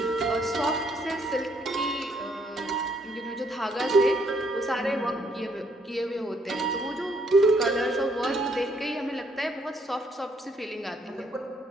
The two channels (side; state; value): both; normal; correlation 0.69